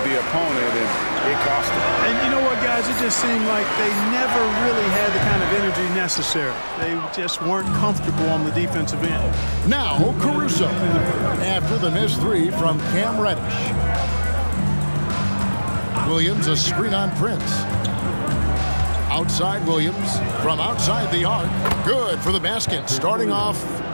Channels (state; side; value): inverted; both; correlation -1.00